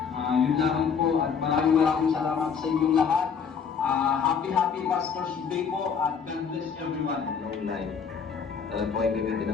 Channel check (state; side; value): quieter; right; 6.5 dB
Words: Yun lang po at maraming salamat sa inyong lahat. Happy Pastor's Day po at God bless everyone. Long life. Alam po ay gamitin